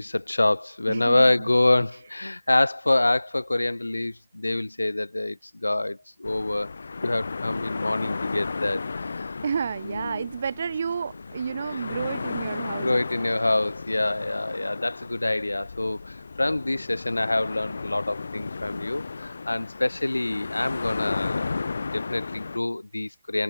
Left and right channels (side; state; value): both; inverted; correlation -0.98